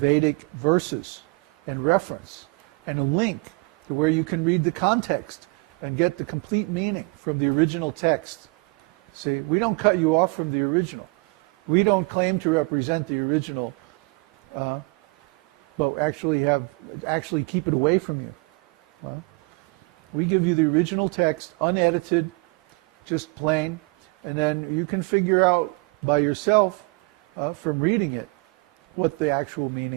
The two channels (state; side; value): quieter; left; 29.3 dB